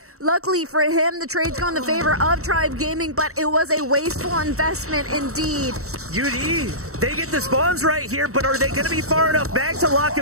Luckily for him, the trade's go in the favor of Tribe Gaming, but it was a wasteful investment indeed. UD, they get the spawns right here, but are they going to be far enough back to lock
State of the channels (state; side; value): late; left; 0.64 ms